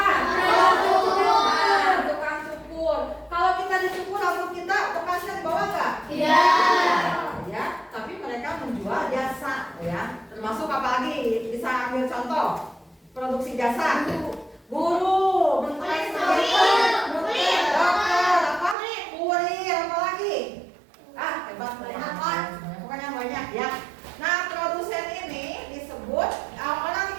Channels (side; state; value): left; drops out; at 18.8 s